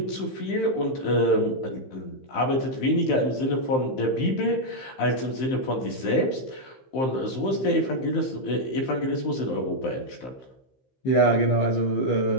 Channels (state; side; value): late; right; 15 ms